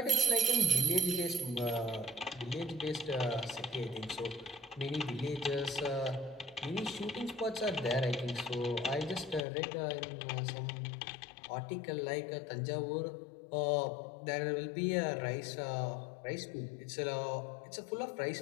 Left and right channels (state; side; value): drops out; right; at 9.4 s